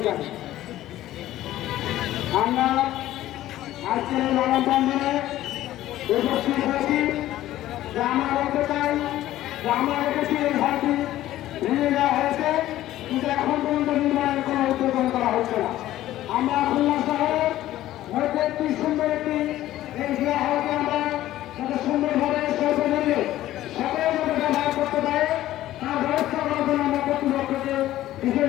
জানি। আমরা আজকের এই মানববন্ধনে উপস্থিত হয়েছি যে আমরা বলতে চাই যে আমরা দেখেছি এই ঘরটি ভেঙে দেওয়া হয়েছে, কিন্তু এখন পর্যন্ত নির্মাণের কোনো উদ্যোগ করা হচ্ছে না। আমরা খুলনা শহরের মধ্যে একটি সুন্দর একটি এই জিয়া হলকে আমরা যাতে সুন্দরভাবে স্বল্প মূল্যে সকলে যাতে ব্যবহার করতে পারে তার ব্যবস্থা করার জন্য আমরা কর্তৃপক্ষকে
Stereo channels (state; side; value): quieter; right; 14.3 dB